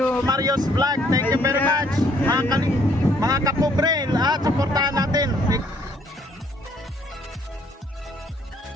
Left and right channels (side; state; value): both; normal; correlation 0.65